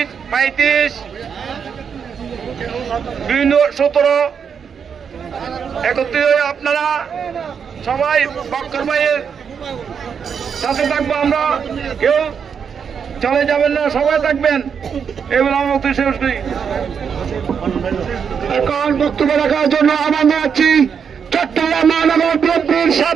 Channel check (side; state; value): left; quieter; 6.9 dB